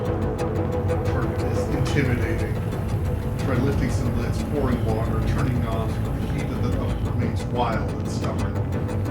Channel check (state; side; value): identical; both; correlation 1.00